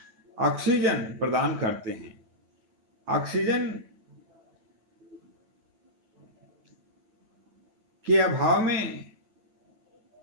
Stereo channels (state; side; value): late; left; 9.2 ms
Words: ऑक्सीजन प्रदान करते हैं। ऑक्सीजन के अभाव में